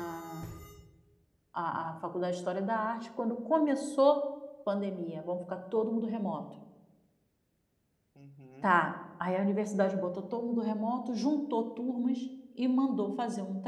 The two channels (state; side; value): identical; both; correlation 1.00